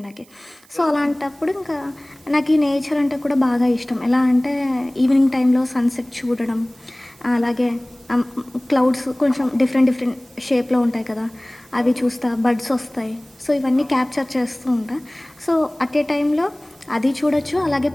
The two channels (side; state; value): right; noise; hiss, 28 dB below the sound